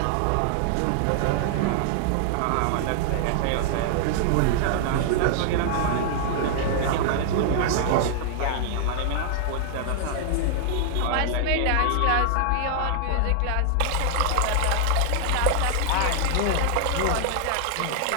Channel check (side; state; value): both; different; correlation -0.01